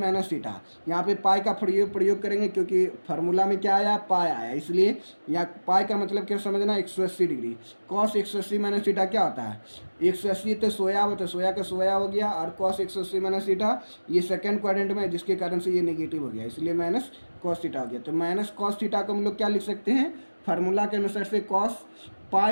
थीटा। यहाँ पे पाई का प्रयोग करेंगे क्योंकि फार्मूला में क्या आया पाई आया, इसलिए यहाँ पाई का मतलब क्या समझना 180 डिग्री। कॉस 180 माइनस थीटा क्या होता है 180 तो सोया हो, तो सोया का सोया हो गया, और कॉस 180 माइनस थीटा ये सेकंड क्वाड्रेंट में है जिसके कारण से ये नेगेटिव हो गया, इसलिए माइनस कॉस थीटा हो गया। तो माइनस कॉस थीटा को हम लोग क्या लिख सकते हैं फार्मूला के अनुसार से cos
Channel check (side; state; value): both; inverted; correlation -1.00